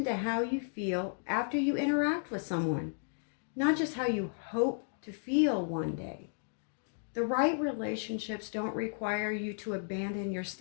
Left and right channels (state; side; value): silent; right; digital silence